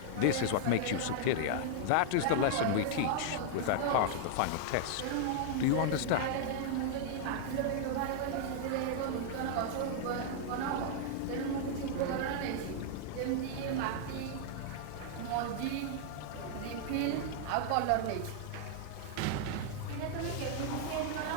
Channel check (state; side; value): different; both; correlation -0.01